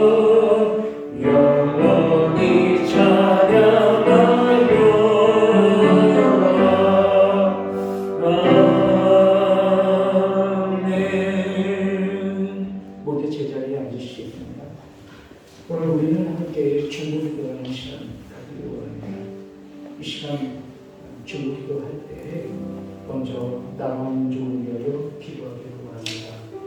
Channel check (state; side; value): identical; both; correlation 1.00